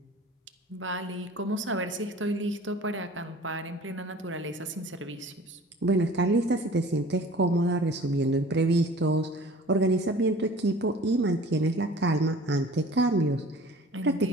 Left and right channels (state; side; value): normal; both; correlation 0.45